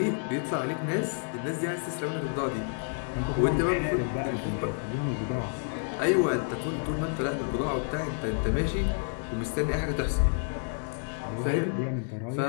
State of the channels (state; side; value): silent; right; 58 dB below the other